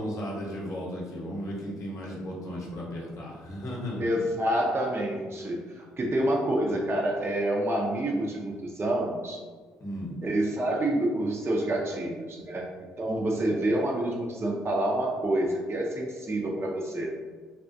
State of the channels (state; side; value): normal; both; correlation 0.77